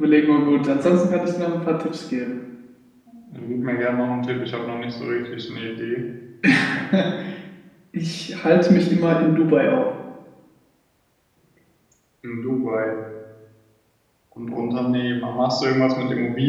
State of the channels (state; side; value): identical; both; correlation 1.00